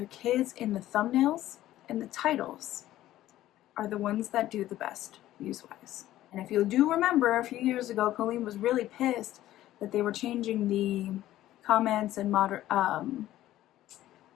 kids in the thumbnails and the titles are the ones that do the best views-wise. And if you do remember, a few years ago, Colleen was really pissed that they were changing the comments and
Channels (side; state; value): right; quieter; 14.2 dB